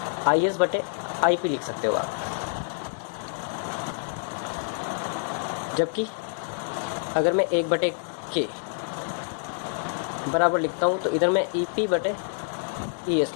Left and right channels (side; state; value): right; silent; digital silence